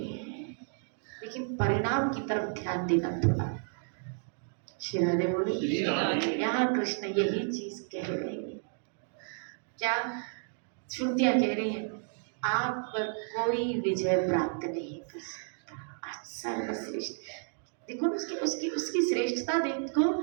हैं, लेकिन परिणाम की तरफ ध्यान देना थोड़ा। श्री राधे बोले यहाँ कृष्ण यही चीज कह रहे हैं। क्या श्रुतियां कह रही हैं, आप पर कोई विजय प्राप्त नहीं कर सकता, आप सर्वश्रेष्ठ। देखो उसकी श्रेष्ठता देखो।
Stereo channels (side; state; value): left; silent; 57 dB below the other